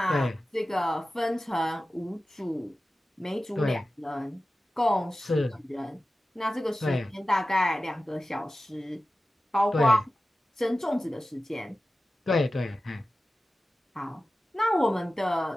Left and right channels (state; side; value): normal; both; correlation 0.95